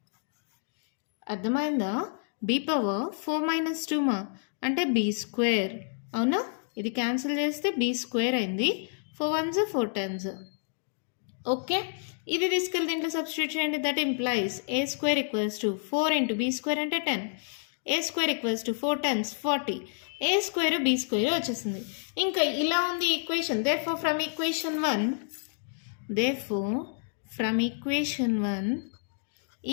అర్థమైందా? బీ పవర్ 4 - 2 అంటే బీ స్క్వేర్. అవునా? ఇది క్యాన్సిల్ చేస్తే బీ స్క్వేర్ అయింది. 4 1s 4 10s. ఓకే, ఇది తీసుకెళ్ళి దీంట్లో సబ్స్టిట్యూట్ చేయండి. That implies A square equals to 4 × b square అంటే 10. A square equals to 4 10s 40. A square b square వచ్చేసింది. ఇంకా ఇలా ఉంది equation. Therefore from equation 1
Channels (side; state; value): right; silent; digital silence